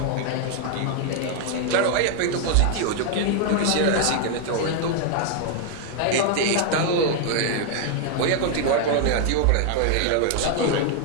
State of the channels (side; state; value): both; different; correlation 0.00